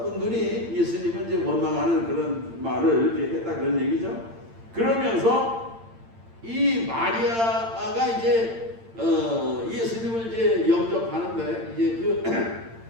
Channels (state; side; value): late; left; 8.8 ms